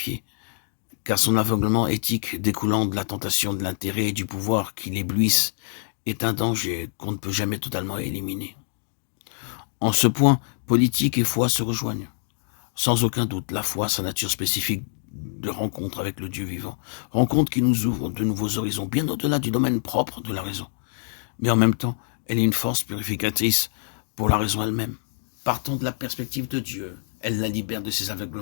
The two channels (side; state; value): right; silent; digital silence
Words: car son aveuglement éthique découlant de la tentation de l'intérêt et du pouvoir qui l'éblouissent est un danger qu'on ne peut jamais totalement éliminer. En ce point, politique et foi se rejoignent. Sans aucun doute, la foi, sa nature spécifique de rencontre avec le Dieu vivant, rencontre qui nous ouvre de nouveaux horizons, bien au-delà du domaine propre de la raison. Mais en même temps, elle est une force purificatrice pour la raison elle-même. Partant de la perspective de Dieu, elle la libère de ses